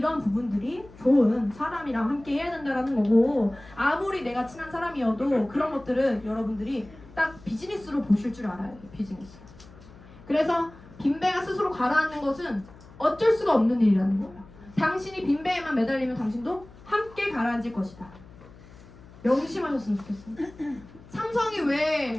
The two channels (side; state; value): left; noise; hum, 21 dB below the sound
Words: 부분들이 좋은 사람이랑 함께 해야 된다라는 거고, 아무리 내가 친한 사람이어도 그런 것들은 여러분들이 딱 비즈니스로 보실 줄 알아야 돼요. 비즈니스. 그래서 빈배가 스스로 가라앉는 것은 어쩔 수가 없는 일이라는 거예요. 당신이 빈배에만 매달리면 당신도 함께 가라앉을 것이다. 명심하셨으면 좋겠어요. 삼성이